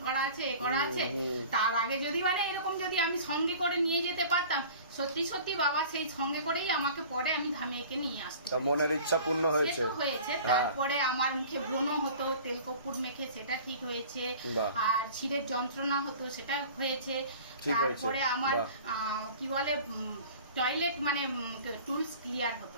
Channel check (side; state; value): both; inverted; correlation -0.43